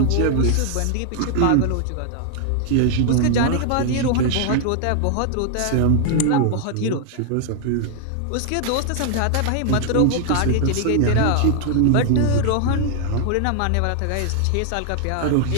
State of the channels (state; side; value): different; both; correlation 0.00